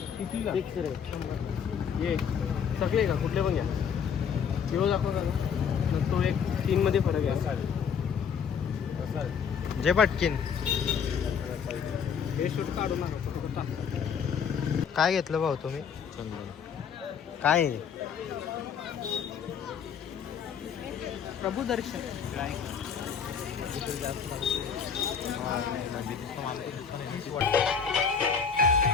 सगळे का कुठले पण घ्या. येऊ दाखव तो एक 3 मध्ये फरक आहे. जे पटकीन हे शूट काढू नका. काय घेतलं भाऊ तुम्ही? काय प्रभू दर्शन.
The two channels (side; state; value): right; quieter; 7.0 dB